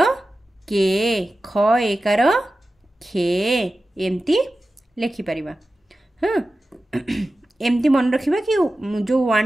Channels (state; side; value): normal; both; correlation 0.94